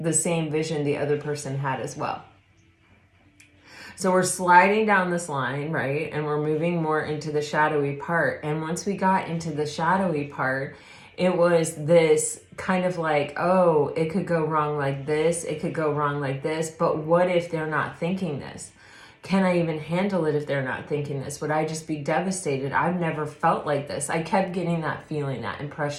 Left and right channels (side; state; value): both; identical; correlation 1.00